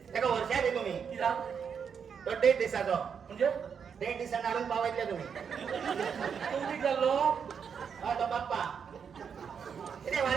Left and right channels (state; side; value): quieter; left; 6.9 dB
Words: ताका वर्षा दी तुमी कित्याक तो 1.5 दिसाचो म्हणजे 1.5 दिसान हाडून पावयतले तुमी तूं कितें जाल्लो हय तो बाप्पा कितें